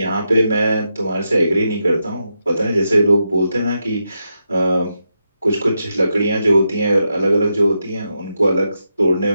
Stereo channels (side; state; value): both; inverted; correlation -0.85